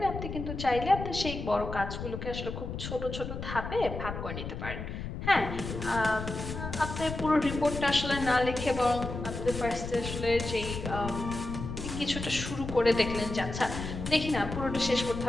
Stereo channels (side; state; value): left; noise; rumble, 7 dB below the sound